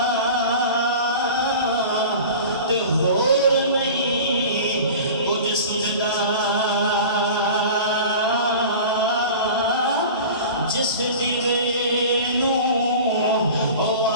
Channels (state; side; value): inverted; both; correlation -0.37